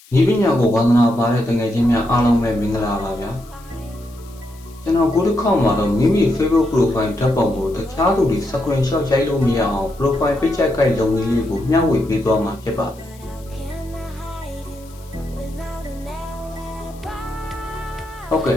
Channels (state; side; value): noise; left; hiss, 25 dB below the sound